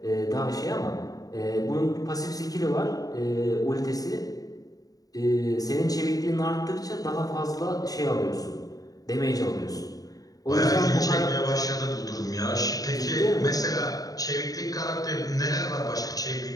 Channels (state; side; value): late; right; 0.18 ms